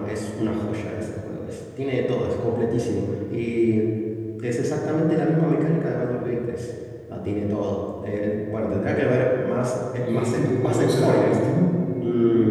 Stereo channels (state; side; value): identical; both; correlation 1.00